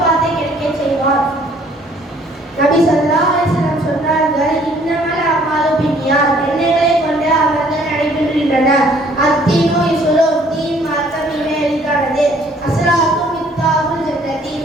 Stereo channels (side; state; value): both; normal; correlation 0.60